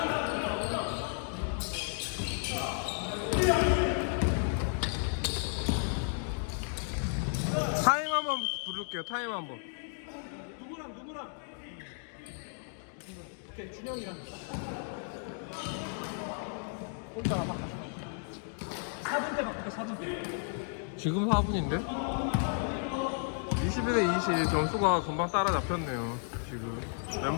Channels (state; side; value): silent; right; 56 dB below the other